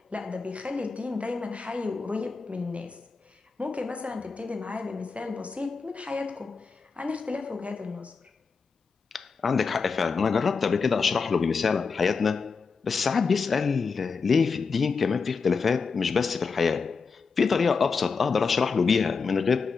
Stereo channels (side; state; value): right; quieter; 5.0 dB